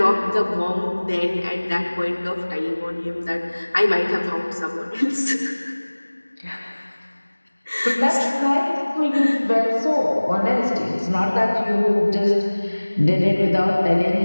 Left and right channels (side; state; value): both; inverted; correlation -1.00